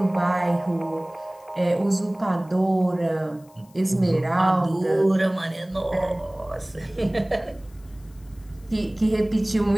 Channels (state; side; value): noise; left; hiss, 29 dB below the sound